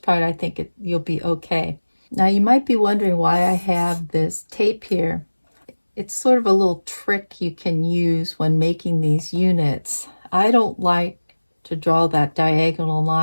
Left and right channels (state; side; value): inverted; both; correlation -1.00